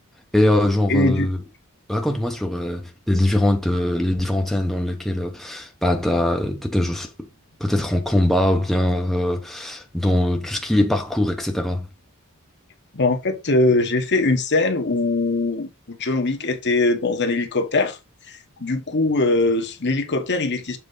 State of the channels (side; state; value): both; normal; correlation 0.59